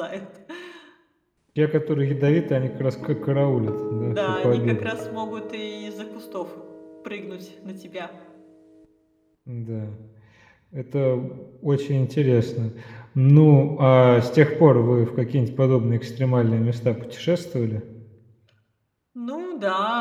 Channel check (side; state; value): both; identical; correlation 1.00